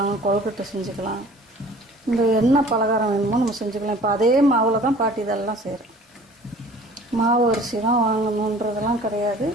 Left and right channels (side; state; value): both; normal; correlation 0.49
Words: கொழுக்கட்டை செஞ்சுக்கலாம், இந்த என்ன பலகாரம் வேணுமோ நம்ம செஞ்சுக்கலாம். இப்போ அதே மாவில் தான் பாட்டி இதெல்லாம் செய்கிறேன். மாவு அரிசி தான் வாங்கணுன்றதெல்லாம் கிடையாது.